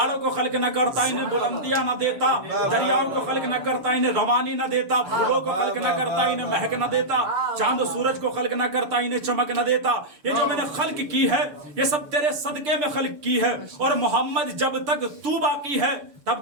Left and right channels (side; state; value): left; late; 6.8 ms